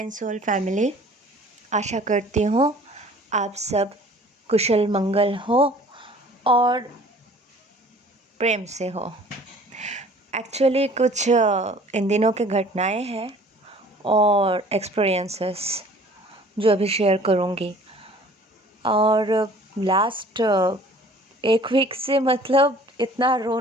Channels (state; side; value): normal; both; correlation 0.50